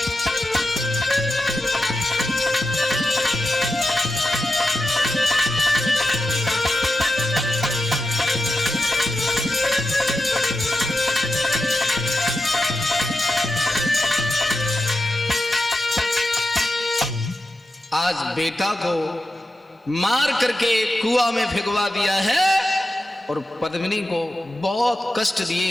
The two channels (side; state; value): both; normal; correlation 0.90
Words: आज बेटा को मार करके कुआं में फेंकवा दिया है और पद्मिनी को बहुत कष्ट